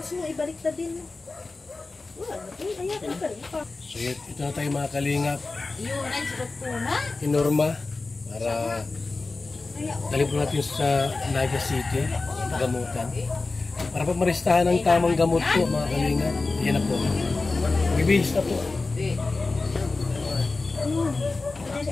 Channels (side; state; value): right; quieter; 3.6 dB